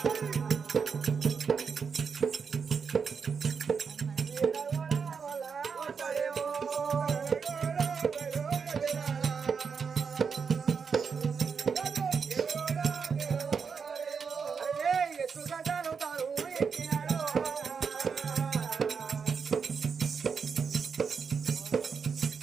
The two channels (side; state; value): left; quieter; 5.9 dB